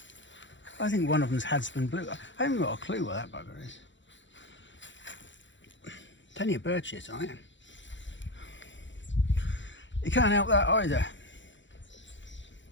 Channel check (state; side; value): late; right; 0.54 ms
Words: I think one of them's Hadsman Blue. I haven't got a clue what that bugger is. Plenty of bird shit on it. You can't help that either.